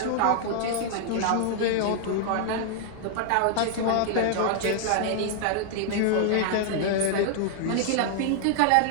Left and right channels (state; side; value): different; both; correlation -0.01